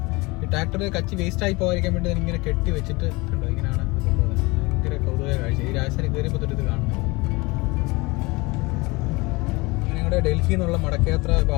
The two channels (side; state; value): right; quieter; 24.4 dB